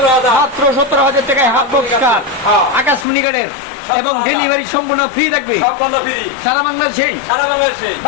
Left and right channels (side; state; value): right; drops out; at 3.1 s